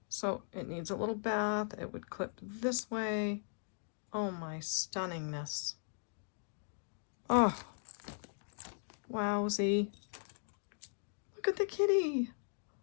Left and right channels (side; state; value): right; silent; digital silence